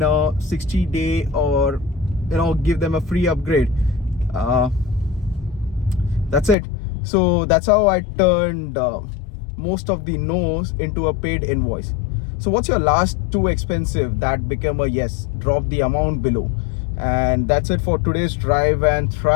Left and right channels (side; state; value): right; drops out; at 6.6 s